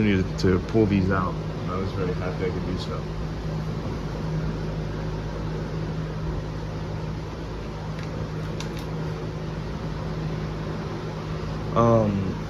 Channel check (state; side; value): identical; both; correlation 1.00